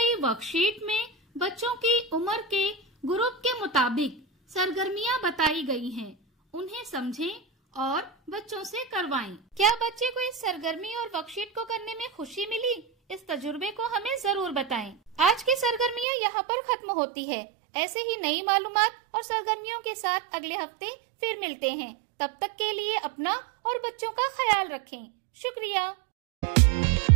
वर्कशीट में बच्चों की उम्र के ग्रुप के मुताबिक सरगर्मियां बताई गई हैं। उन्हें समझें और बच्चों से करवाएं। क्या बच्चे को इस सरगर्मी और वर्कशीट को करने में खुशी मिली? इस तजुर्बे को हमें जरूर बताएं। आज की सरगर्मियां यहाँ पर खत्म होती है। ऐसे ही नई मालूमात और सरगर्मियों के साथ अगले हफ्ते फिर मिलते हैं। तब तक के लिए अपना और बच्चों का ख्याल रखें। शुक्रिया।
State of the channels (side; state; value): left; drops out; at 16.1 s